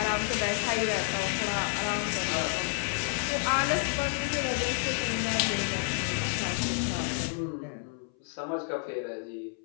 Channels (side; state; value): right; silent; 58 dB below the other